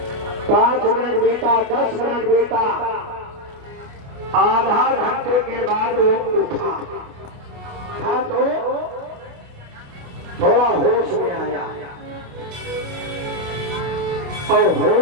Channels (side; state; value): left; late; 28 ms